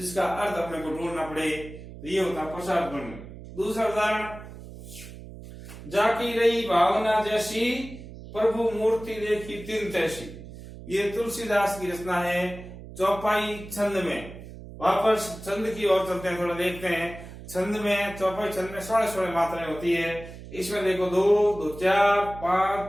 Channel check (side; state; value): right; noise; hum, 14 dB below the sound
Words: अर्थ अपने को ढूंढना पड़े, तो ये होता है प्रसाद गुण। दूसरा उदाहरण, जाकी रही भावना जैसी, प्रभु मूर्ति देखी तिन तैसी। ये तुलसीदास की रचना है, चौपाई छंद में। वापस छंद की ओर चलते हैं, थोड़ा देखते हैं। छंद में, चौपाई छंद में 16 मात्राएं होती है। इसमें देखो 2, 2, 4,